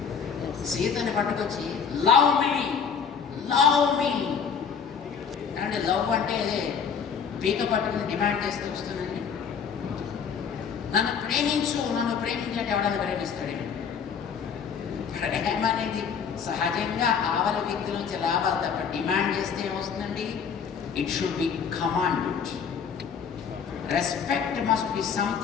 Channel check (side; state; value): right; quieter; 6.8 dB